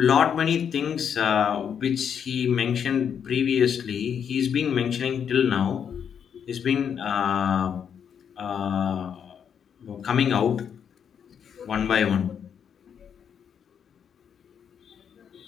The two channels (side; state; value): right; quieter; 7.9 dB